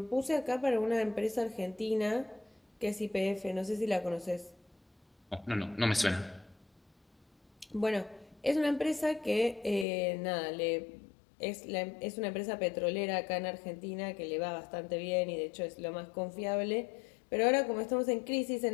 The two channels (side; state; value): right; drops out; at 9.9 s